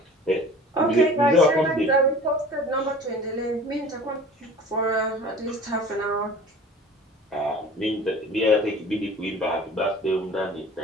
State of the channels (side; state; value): both; normal; correlation 0.43